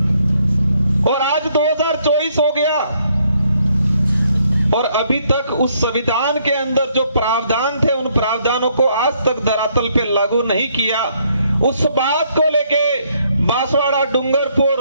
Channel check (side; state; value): both; inverted; correlation -0.70